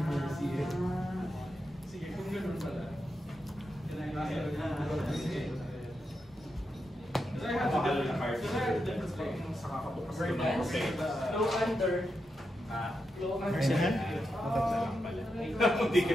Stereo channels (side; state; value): both; normal; correlation 0.86